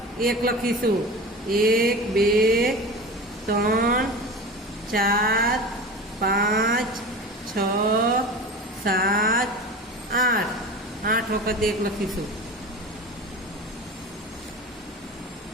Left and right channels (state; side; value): normal; both; correlation 0.32